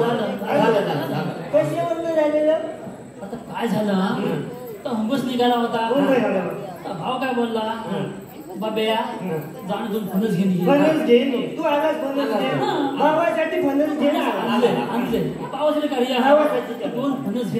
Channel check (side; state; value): both; identical; correlation 1.00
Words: कशावर झालेलं आता काय झालं तर हुंबस निघाला होता भाव काय बोलला बाब्या जाण दोन फणस घेऊन ये. फणस घे नी. तू आलास फणस घे. भावासाठी फणस घे ना. आणले पावसाला काढी भावासाठी दोन फणस